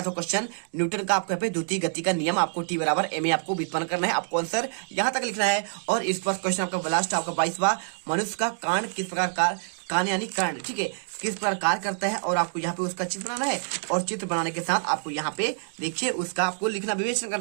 क्वेश्चन न्यूटन का आपको यहाँ पे द्वितीय गति का नियम, आपको T बराबर ma आपको व्युत्पन्न करना है, आपको आंसर यहाँ तक लिखना है। और इस पर क्वेश्चन आपका लास्ट आपका 22वां, मनुष्य का कान किस प्रकार कान यानी कर्ण, ठीक है, किस प्रकार कार्य करता है। और आपको यहाँ पे उसका चित्र बनाना है। और चित्र बनाने के साथ आपको यहाँ पे देखिए उसका आपको लिखना विवेचन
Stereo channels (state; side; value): silent; left; digital silence